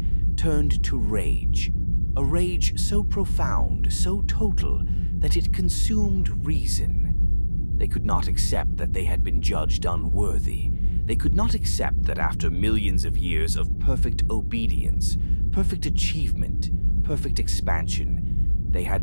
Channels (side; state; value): both; inverted; correlation -1.00